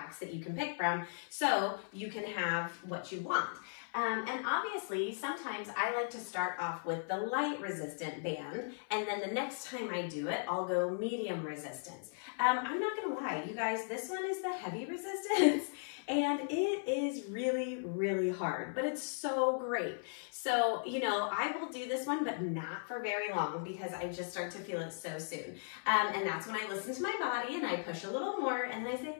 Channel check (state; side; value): silent; right; 53 dB below the other